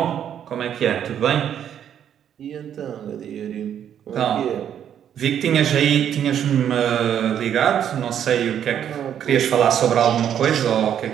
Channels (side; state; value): left; quieter; 9.5 dB